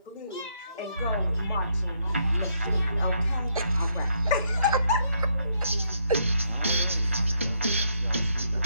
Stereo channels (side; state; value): both; inverted; correlation -0.74